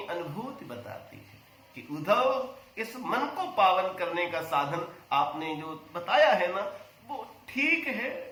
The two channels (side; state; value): both; identical; correlation 1.00